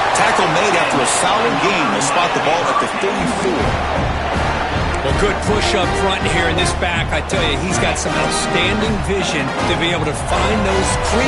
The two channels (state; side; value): identical; both; correlation 1.00